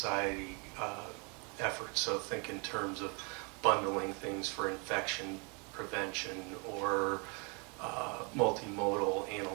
efforts. So think in terms of bundling things for infection prevention or multimodal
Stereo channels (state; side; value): quieter; left; 33.4 dB